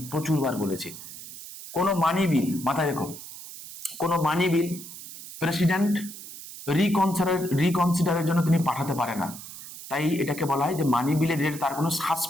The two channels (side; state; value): right; noise; hiss, 13 dB below the sound